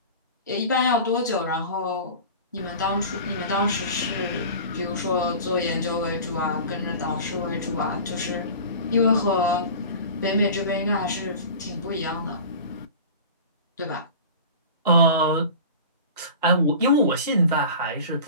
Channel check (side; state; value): both; inverted; correlation -0.37